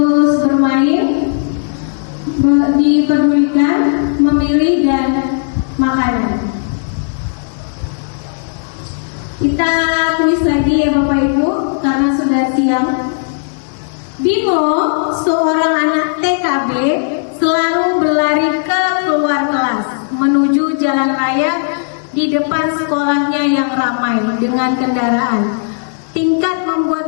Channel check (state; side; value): silent; right; digital silence